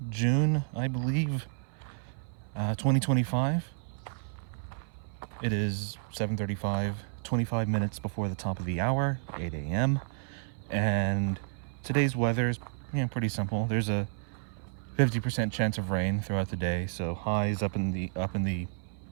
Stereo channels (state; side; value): silent; left; 57 dB below the other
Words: June, I believe, 2025. It is 7:35, 25 minutes before the top of the hour, 8 a.m. And today's weather is pretty simple. There's a 50% chance of rain throughout the day, so highs up in the